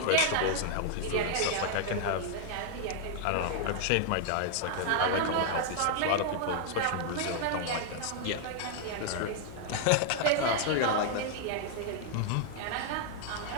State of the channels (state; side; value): different; both; correlation 0.00